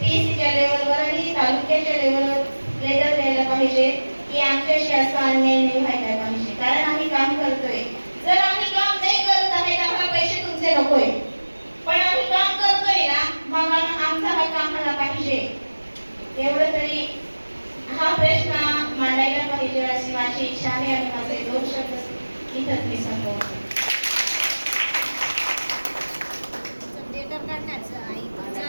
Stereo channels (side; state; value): both; inverted; correlation -1.00